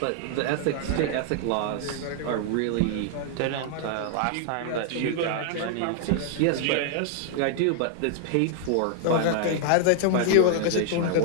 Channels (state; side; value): different; both; correlation 0.00